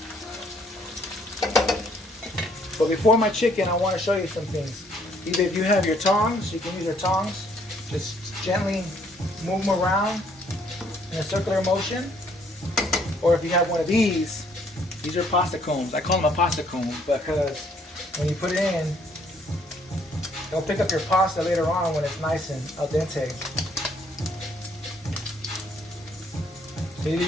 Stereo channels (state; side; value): normal; both; correlation 0.65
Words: But before my chicken, I want to show you some things. Either if you have your tongs, you can use your tongs. Just gently move them around in a circular motion. Or if you have one of these are pasta combs. I call them a pasta comb because when you put it in, it'll pick up your pasta later on when it's nice and al dente. So